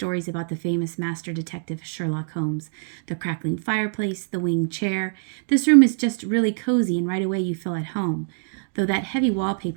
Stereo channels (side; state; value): left; silent; digital silence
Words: about the famous master detective Sherlock Holmes. The crackling fireplace, the winged chair. This room is just really cozy and right away you feel at home, though that heavy